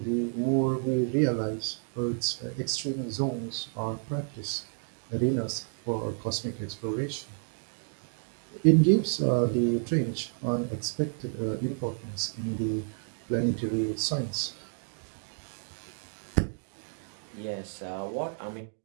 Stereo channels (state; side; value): silent; left; 57 dB below the other